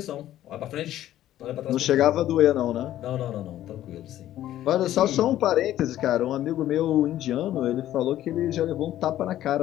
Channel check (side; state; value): right; quieter; 13.0 dB